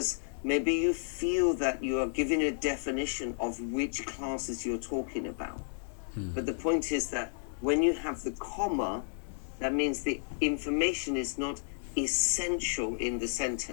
maybe you feel that you are giving a definition of which classes you're talking about. But the point is that when you have the comma, that means the information is not essential in the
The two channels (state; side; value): silent; right; digital silence